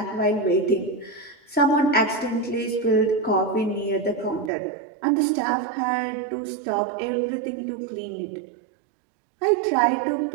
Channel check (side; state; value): left; drops out; at 4.5 s